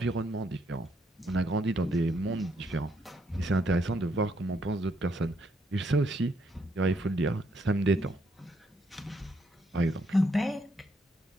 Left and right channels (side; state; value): both; normal; correlation 0.74